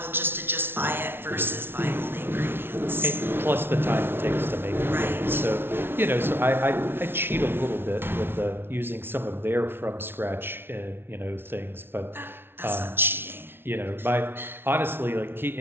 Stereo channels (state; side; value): late; left; 0.11 ms